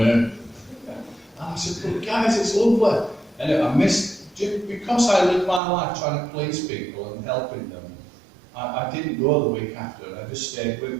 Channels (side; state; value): left; drops out; at 5.6 s